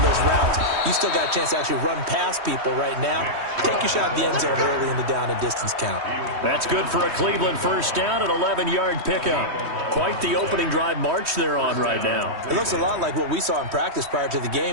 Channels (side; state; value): left; late; 3.1 ms